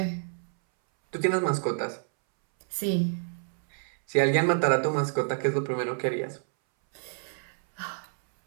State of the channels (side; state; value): left; silent; 59 dB below the other